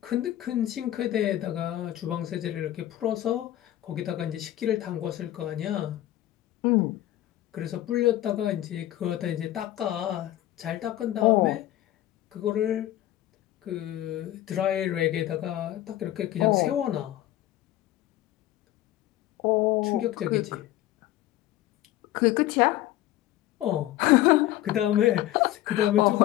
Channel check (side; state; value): right; quieter; 14.3 dB